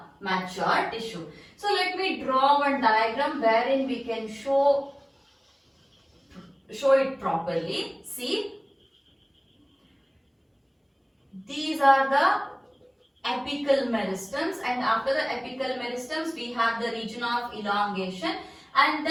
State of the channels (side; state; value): both; identical; correlation 1.00